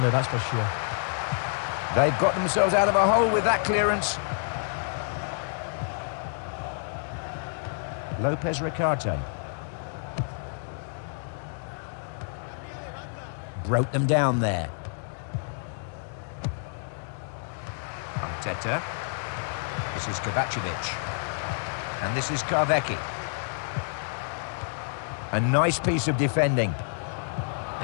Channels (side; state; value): right; silent; digital silence